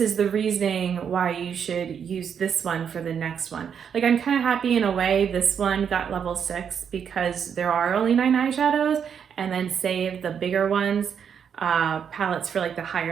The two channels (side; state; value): left; quieter; 7.6 dB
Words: the reasoning why you should use this one for the next one. Like I'm kind of happy in a way this one got level 6 because there are only 9 eyeshadows, and then save the bigger ones, palettes for like the